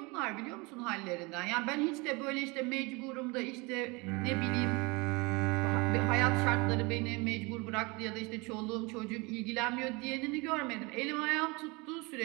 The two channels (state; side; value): quieter; left; 26.8 dB